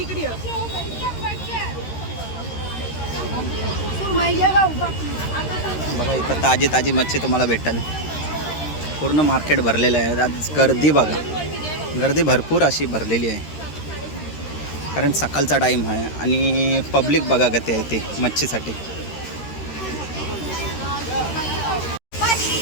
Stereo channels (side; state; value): right; late; 13 ms